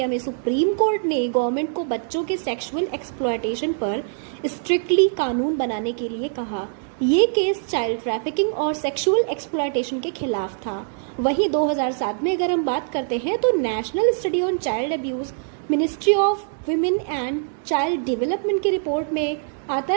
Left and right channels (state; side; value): silent; left; digital silence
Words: में सुप्रीम कोर्ट ने गवर्नमेंट को बच्चों के सेक्सुअल एक्सप्लॉयटेशन पर स्ट्रिक्टली कानून बनाने के लिए कहा। ये केस चाइल्ड ट्रैफिकिंग और सेक्सुअल एक्सप्लॉयटेशन के खिलाफ था। वहीं 2007 में अगर हम बात करते हैं तो national study on child abuse ministry of women and child development की रिपोर्ट में आता